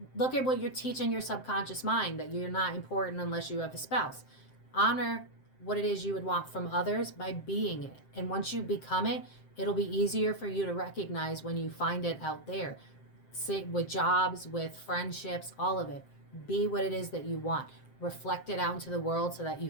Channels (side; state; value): right; late; 7.6 ms